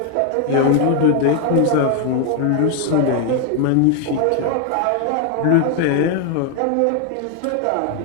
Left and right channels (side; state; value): both; different; correlation 0.01